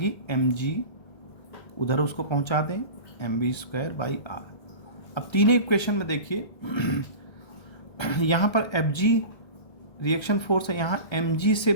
एम जी, उधर उसको पहुँचा दें, M B square by R. अब तीनों इक्वेशन में देखिए यहाँ पर एफ जी रिएक्शन फोर्स है, यहाँ एम जी से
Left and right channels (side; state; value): right; late; 1.3 ms